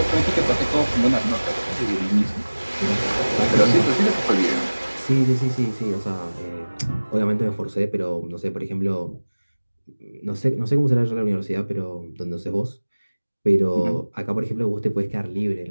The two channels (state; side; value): inverted; both; correlation -1.00